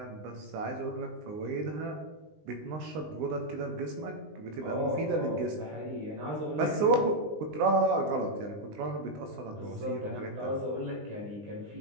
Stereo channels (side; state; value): left; late; 19 ms